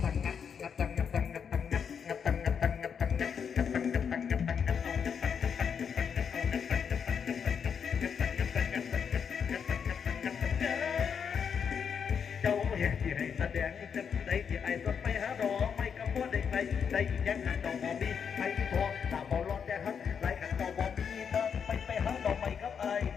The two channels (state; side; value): quieter; right; 7.0 dB